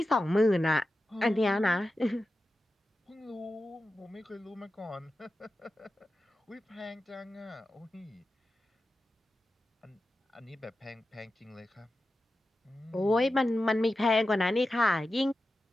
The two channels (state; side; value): normal; both; correlation 0.92